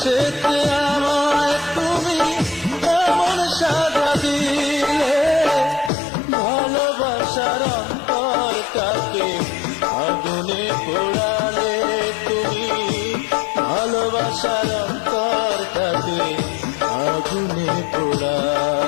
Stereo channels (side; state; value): right; drops out; at 5.9 s